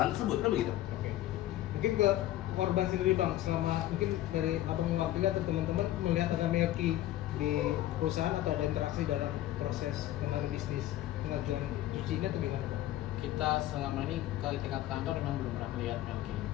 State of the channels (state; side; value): quieter; right; 14.3 dB